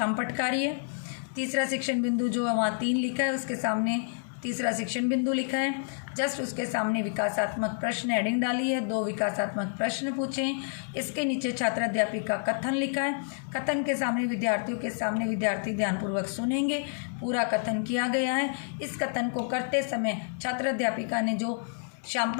कार्य। तीसरा शिक्षण बिंदु जो वहाँ 3 लिखा है उसके सामने तीसरा शिक्षण बिंदु लिखा है। जस्ट उसके सामने विकासात्मक प्रश्न हेडिंग डाली है। 2 विकासात्मक प्रश्न पूछे। इसके नीचे छात्र अध्यापिका कथन लिखा है। कथन के सामने विद्यार्थियों के सामने विद्यार्थी ध्यानपूर्वक सुनेंगे। पूरा कथन किया गया है। इस कथन को करते समय छात्र अध्यापिका ने जो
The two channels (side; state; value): right; silent; 59 dB below the other